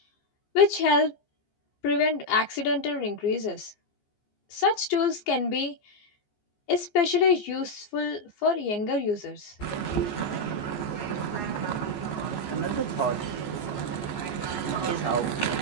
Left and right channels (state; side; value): late; right; 14 ms